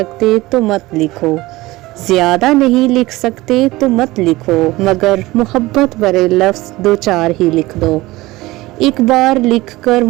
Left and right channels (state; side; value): quieter; left; 19.4 dB